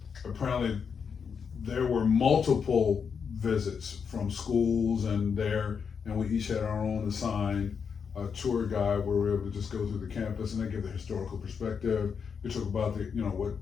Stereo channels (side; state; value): right; quieter; 6.4 dB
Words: apparently there were multiple visits from schools and we each had our own assigned tour guide where we were able to just go through the campus, and they give the historical perspective. We talk about what